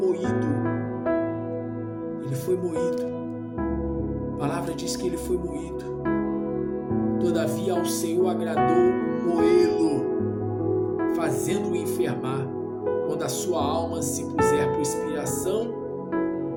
a palavra diz que ele foi moído, todavia ao Senhor agradou moê-lo, fazendo-o enfermar, quando a sua alma se puser por expiação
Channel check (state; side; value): identical; both; correlation 1.00